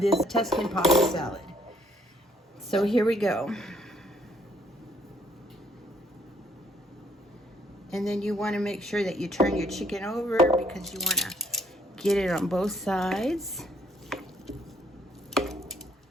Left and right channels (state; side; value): normal; both; correlation 0.66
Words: Tuscan pasta salad. So here we go. And then you want to make sure that you turn your chicken over because you want to get it on both sides.